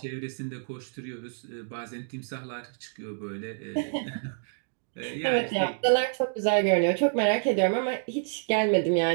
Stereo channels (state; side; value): silent; left; digital silence